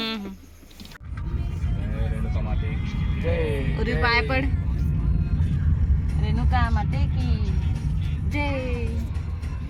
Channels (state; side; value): identical; both; correlation 1.00